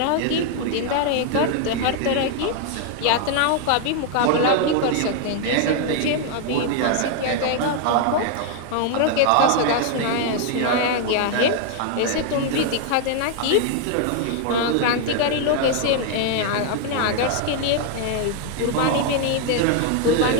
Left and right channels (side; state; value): both; different; correlation 0.00